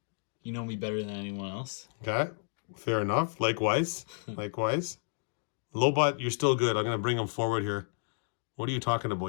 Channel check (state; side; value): silent; right; digital silence